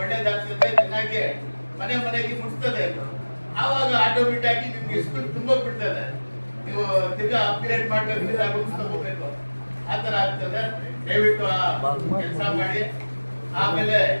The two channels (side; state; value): both; inverted; correlation -1.00